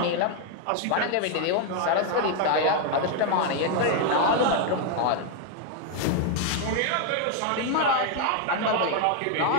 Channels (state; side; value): different; both; correlation 0.01